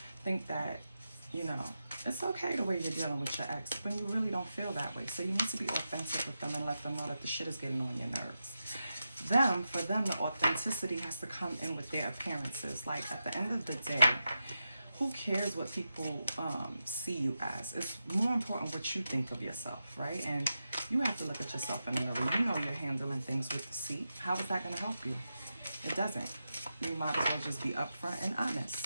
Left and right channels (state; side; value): inverted; both; correlation -0.89